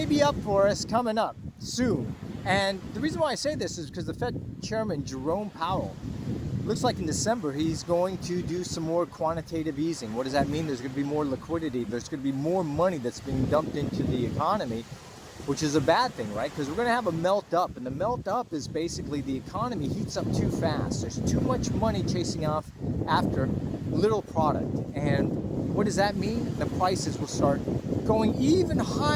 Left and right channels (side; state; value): both; identical; correlation 1.00